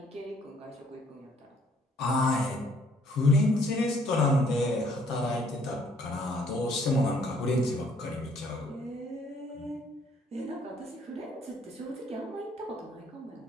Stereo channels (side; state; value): both; normal; correlation 0.64